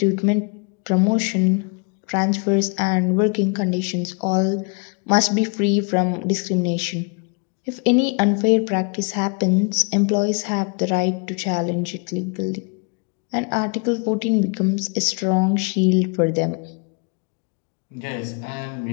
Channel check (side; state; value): right; quieter; 34.6 dB